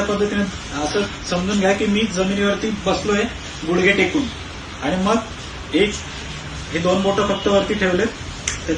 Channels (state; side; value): identical; both; correlation 1.00